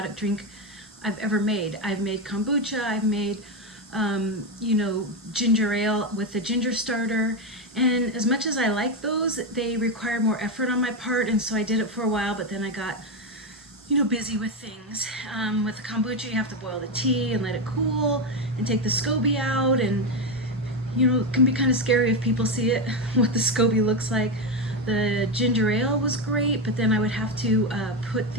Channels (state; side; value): normal; both; correlation 0.10